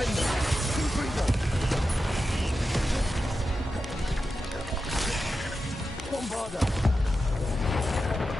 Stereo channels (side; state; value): both; normal; correlation 0.90